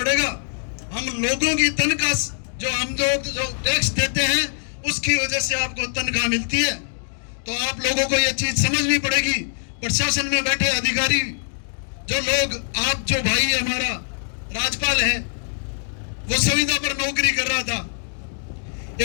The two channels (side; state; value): right; silent; digital silence